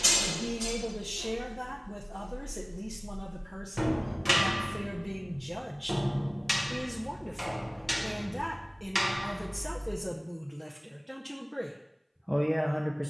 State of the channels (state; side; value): identical; both; correlation 1.00